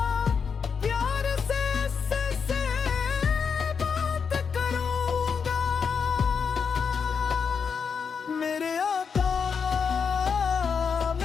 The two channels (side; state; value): right; quieter; 6.1 dB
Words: प्यार से बात करूंगा। मेरे आका